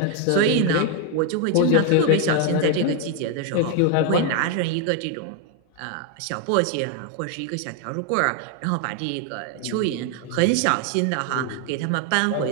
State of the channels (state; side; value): different; both; correlation 0.01